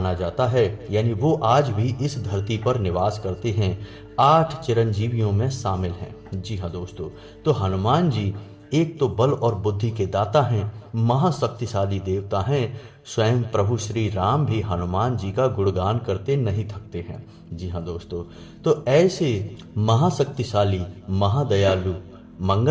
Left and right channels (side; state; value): both; identical; correlation 1.00